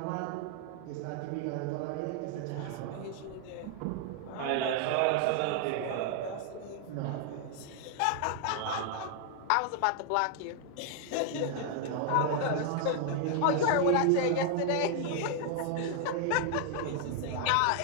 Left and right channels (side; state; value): both; different; correlation 0.00